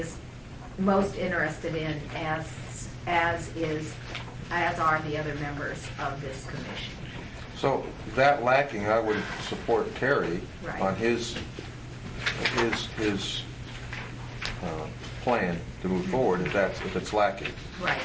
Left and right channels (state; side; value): identical; both; correlation 1.00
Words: most interested in, as are the other members of this commission. So that lacking, I would support Terry Right. on his plan to move forward if it's lacking. Right.